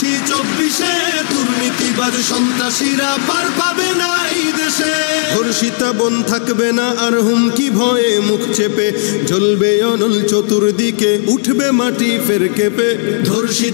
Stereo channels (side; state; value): right; silent; digital silence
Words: ২৪, দুর্নীতিবাজ সন্ত্রাসীরা পার পাবে না এই দেশে। ধর্ষিতা বোন থাকবে না আর হুমকি ভয়ে মুখ চেপে, জ্বলবে অনল চতুর্দিকে উঠবে মাটি ফের কেঁপে।